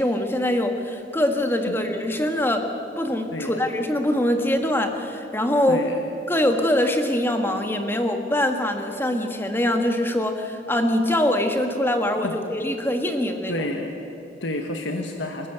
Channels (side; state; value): both; normal; correlation 0.67